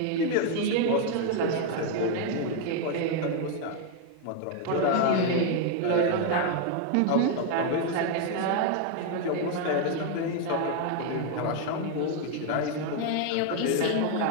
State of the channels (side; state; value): both; different; correlation 0.01